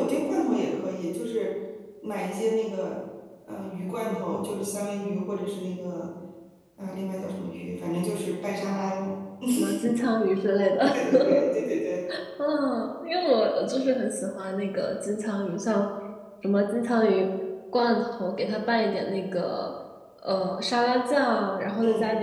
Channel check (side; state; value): both; identical; correlation 1.00